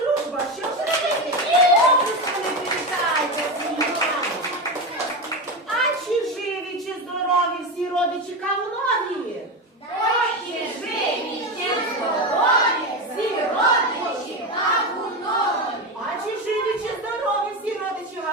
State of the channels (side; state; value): both; normal; correlation 0.17